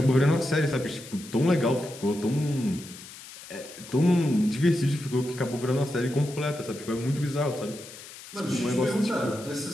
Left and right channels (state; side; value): noise; left; hiss, 16 dB below the sound